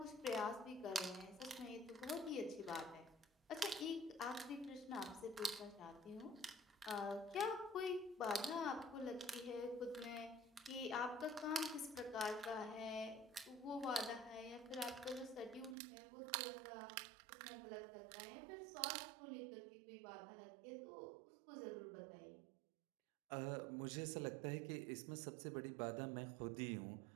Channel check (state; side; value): drops out; left; at 15.8 s